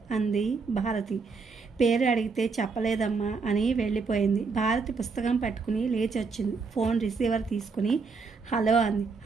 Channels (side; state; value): left; quieter; 4.7 dB